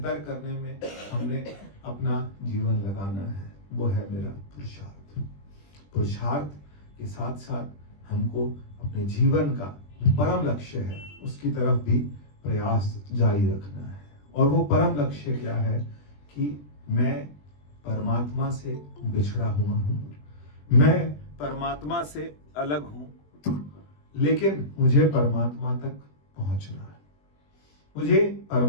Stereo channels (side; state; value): right; late; 20 ms